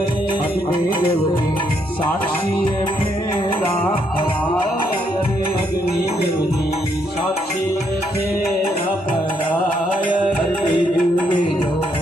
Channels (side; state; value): both; normal; correlation 0.74